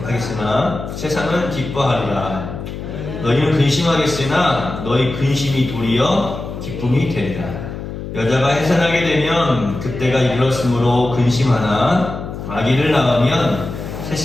세상은 기뻐하리라. 너희는 근심하겠으나 너희 근심이 도리어 기쁨이 되리라. 여자가 해산하게 되면 그때가 이르렀으므로 근심하나 아기를 낳으면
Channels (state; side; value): noise; left; hum, 8 dB below the sound